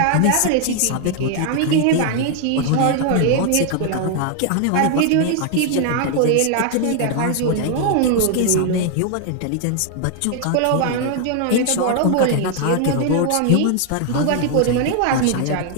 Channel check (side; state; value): both; different; correlation 0.00